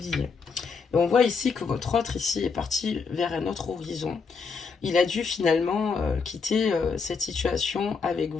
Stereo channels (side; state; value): right; quieter; 5.1 dB